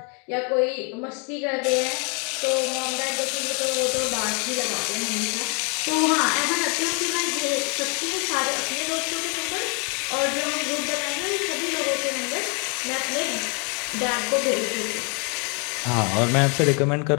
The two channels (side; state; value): right; quieter; 36.0 dB